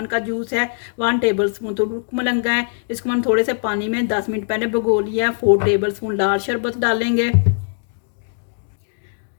का जूस है, 1 टेबल स्पून तुर्क मलंगा है। इसको मैंने थोड़े से पानी में 10 मिनट पहले भिगो लिया है। 4 टेबल स्पून लाल शरबत डालेंगे।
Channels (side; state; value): right; silent; 65 dB below the other